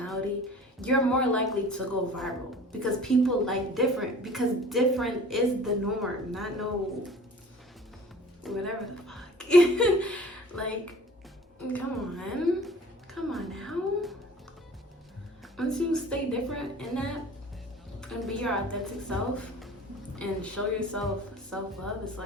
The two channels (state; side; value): normal; both; correlation 0.45